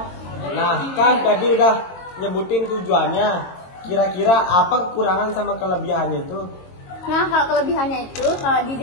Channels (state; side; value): late; right; 22 ms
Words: Nah, kan tadi udah nyebutin tujuannya. Kira-kira apa kekurangan sama kelebihannya itu? Nah, kalau kelebihannya itu, kalau di